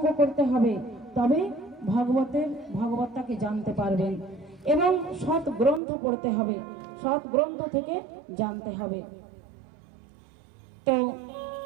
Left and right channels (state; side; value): drops out; left; at 5.8 s